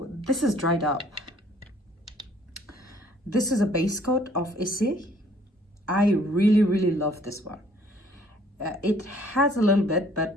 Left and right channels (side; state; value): both; normal; correlation 0.59